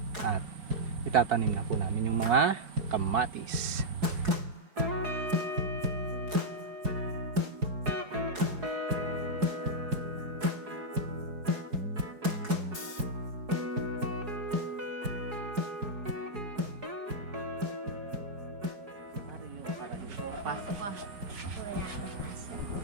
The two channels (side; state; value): left; late; 4.7 ms